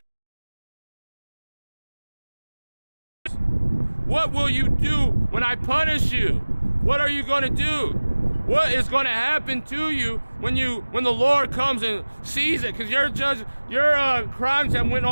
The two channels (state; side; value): inverted; both; correlation -1.00